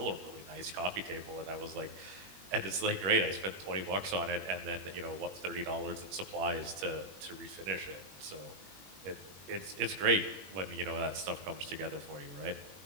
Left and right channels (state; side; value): late; left; 21 ms